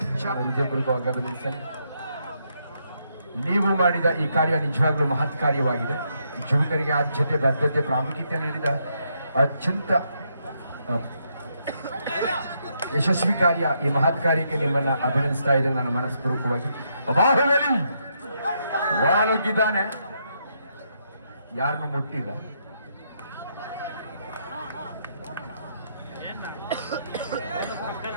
ಗಮನಿಸಿ. ನೀವು ಮಾಡಿದ ಈ ಕಾರ್ಯ ನಿಜವಾಗ್ಲೂ ಮಹತ್ ಕಾರ್ಯವಾಗಿದೆ. ಯುವಕರಿಗೆ ಆದ್ಯತೆ ಬದ್ಧತೆ ಪ್ರಾಮುಖ್ಯತೆ ನೀಡಿದ ಅತ್ಯಂತ ಯಶಸ್ವಿ ಕಾರ್ಯ. ಈ ಮಹತ್ ಕಾರ್ಯಕ್ಕೆ ನಿಮ್ಮನ್ನ ಅಭಿನಂದಿಸ್ತಾ ಇದ್ದೇನೆ ನನ್ನ ಮನಸ್ಪೂರ್ವಕವಾಗಿ. ಬಾಹುಬಲಿ ಒಳನುಗ್ಗಿದ್ದಾನೆ, ಯಾರನ್ನು ಮುಟ್ಟಿಲ್ಲ.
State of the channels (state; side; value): inverted; both; correlation -0.77